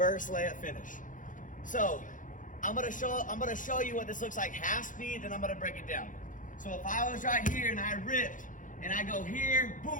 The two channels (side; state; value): right; late; 0.38 ms